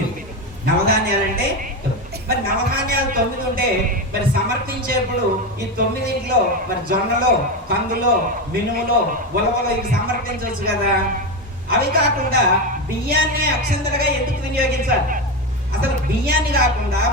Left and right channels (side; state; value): both; normal; correlation 0.15